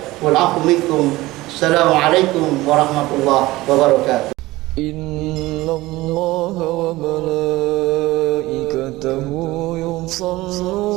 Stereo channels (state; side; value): quieter; left; 18.9 dB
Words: wal 'afwu minkum. Assalamualaikum warahmatullahi wabarakatuh. Innallaha wa malaikatahu